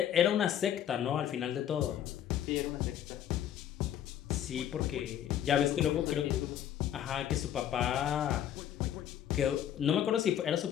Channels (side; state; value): right; quieter; 10.4 dB